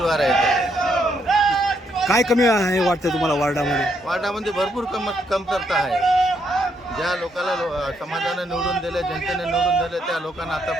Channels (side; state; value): both; normal; correlation 0.75